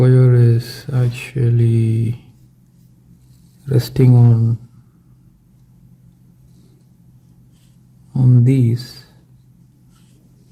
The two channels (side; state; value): both; identical; correlation 1.00